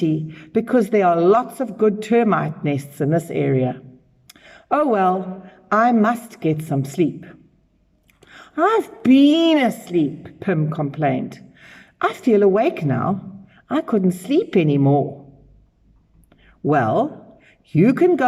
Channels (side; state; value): both; identical; correlation 1.00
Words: because there are lots of good termite nests in this area. Oh well, I must get some sleep." "I've been asleep," Pim complained. "I feel awake now. I couldn't sleep anymore." "Well, you can